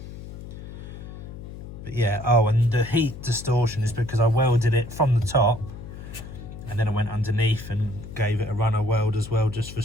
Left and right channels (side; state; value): left; noise; hum, 12 dB below the sound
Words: But yeah, oh, and the heat distortion is because I welded it from the top and then I went underneath and gave it a runner weld as well, just for